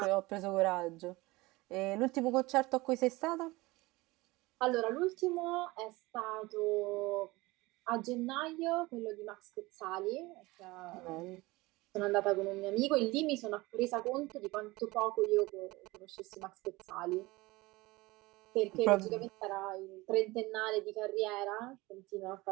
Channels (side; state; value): left; quieter; 21.5 dB